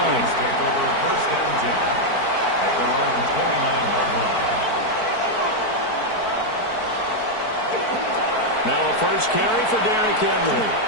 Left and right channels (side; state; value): right; late; 4.5 ms